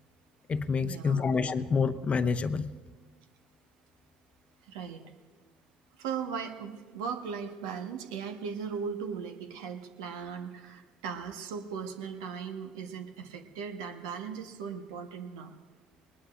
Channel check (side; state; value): both; normal; correlation 0.62